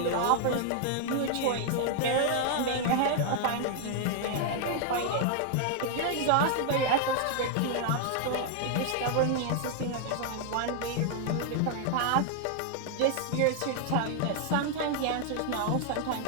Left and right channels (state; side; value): different; both; correlation 0.00